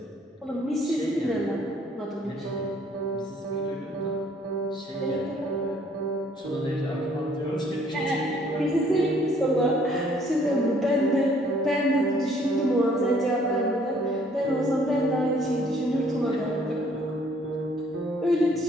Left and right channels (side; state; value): both; normal; correlation 0.61